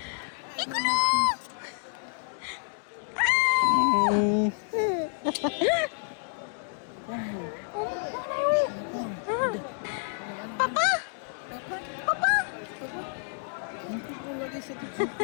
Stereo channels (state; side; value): silent; right; 59 dB below the other